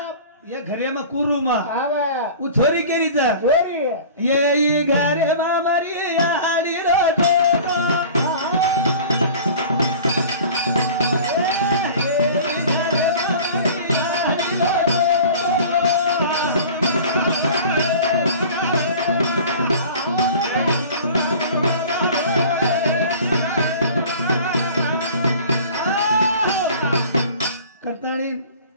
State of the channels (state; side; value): inverted; both; correlation -0.42